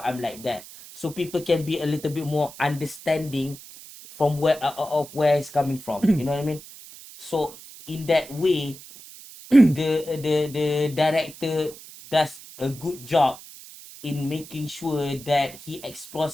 I'm like that. So people can be a little bit more understanding from where of where it's coming from. You know what I mean? So in that way, the director does a good job in making sure that he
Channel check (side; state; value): right; noise; hiss, 17 dB below the sound